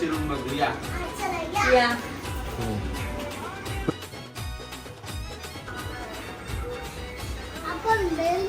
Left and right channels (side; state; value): both; identical; correlation 1.00